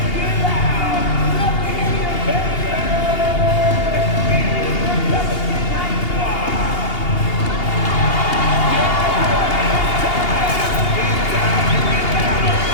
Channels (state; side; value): late; right; 2.8 ms